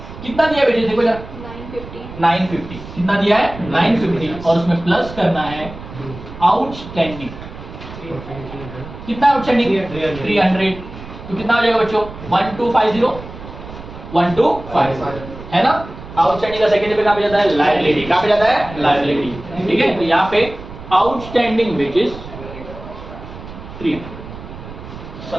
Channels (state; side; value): noise; right; rumble, 14 dB below the sound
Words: कितना दिया वेजेस देखो जरा? 950। कितना दिया है? 950 और उसमें प्लस करना है आउटस्टैंडिंग। कितना आउटस्टैंडिंग? 300। तो कितना हो जाएगा बच्चों? 1250 1250 है ना? आउटस्टैंडिंग का सेकंड पे कहां पे जाता है? लायबिलिटी। कहां पे जाता है? लायबिलिटी। ठीक है, तो यहां पे आउटस्टैंडिंग वेजेस 300।